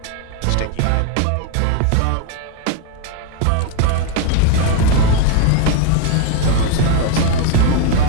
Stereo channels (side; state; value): both; different; correlation 0.01